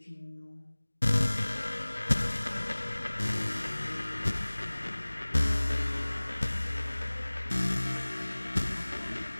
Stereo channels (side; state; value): both; inverted; correlation -1.00